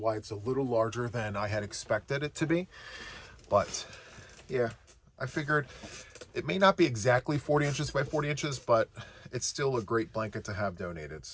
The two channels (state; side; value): identical; both; correlation 1.00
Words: it's a little larger than I had expected it to be. But yeah, I figured it may not be exactly 40 inches by 40 inches, but it's still a great blanket to have donated.